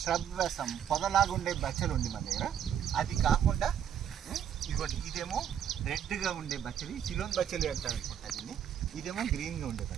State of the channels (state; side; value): quieter; left; 9.2 dB